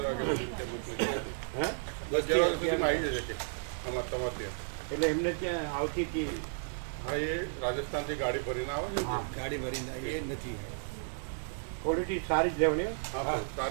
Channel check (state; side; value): silent; left; 56 dB below the other